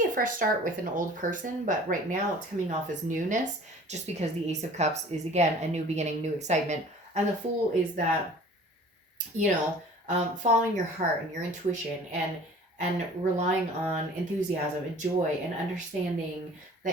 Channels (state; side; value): normal; both; correlation 0.47